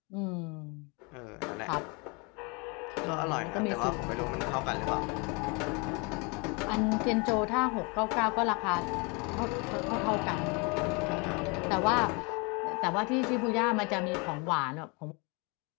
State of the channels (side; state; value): right; quieter; 30.6 dB